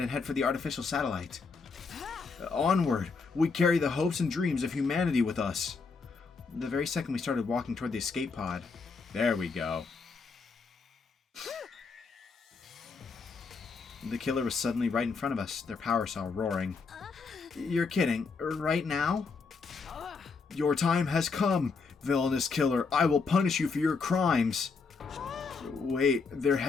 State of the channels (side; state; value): right; quieter; 4.7 dB